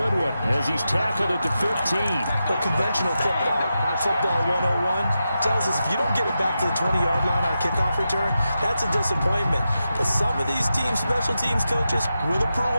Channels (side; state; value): both; inverted; correlation -0.89